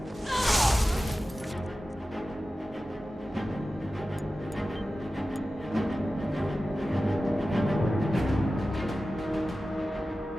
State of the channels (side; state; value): both; normal; correlation 0.95